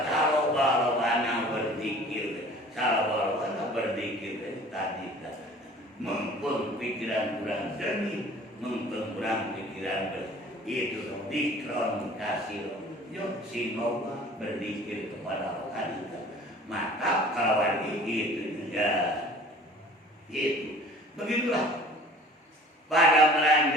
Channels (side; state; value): both; normal; correlation 0.47